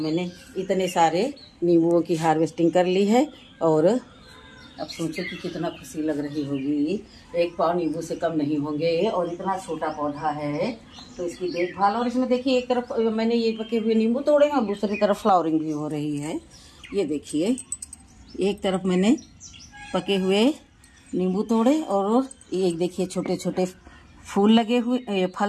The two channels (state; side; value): identical; both; correlation 1.00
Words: इतने सारे नींबुओं की हार्वेस्टिंग कर ली है। और अब सोचो कि कितना खुशी लग रही होगी। एक पाव नींबू से कम नहीं होंगे, और इतना छोटा पौधा है तो इसकी देखभाल। और इसमें देखिए एक तरफ मैंने ये पके हुए नींबू तोड़े हैं और दूसरी तरफ फ्लावरिंग भी हो रही है। ये देखिए एक तरफ मैंने पके हुए नींबू तोड़े और एक देखिए छोटे छोटे फूल लगे हुए,